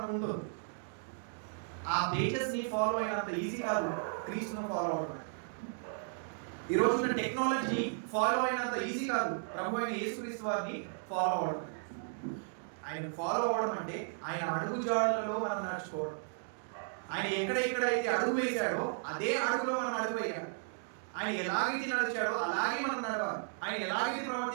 ఉంటుంది. ఆ పేజెస్ ని ఫాలో అయినంత ఈజీ కాదు క్రీస్తును ఫాలో అవడం. ఈ రోజున టెక్నాలజీ ఫాలో అయినంత ఈజీ కాదు ప్రభు అయిన యేసుక్రీస్తు వారిని ఫాలో అవడం. ఆయన ఫాలో అవడం అంటే ఆయన అడుగు జాడలలో మనం నడుచుకోవడం. ఆయన ఎక్కడెక్కడైతే అడుగు వేశాడో అదే అడుగులో మనం అడుగు వేయాలి. ఆయన ఎలాగైతే నడిచాడో అలాగే మనం నడవాలి. ఆయన ఎలాగైతే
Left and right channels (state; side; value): silent; left; digital silence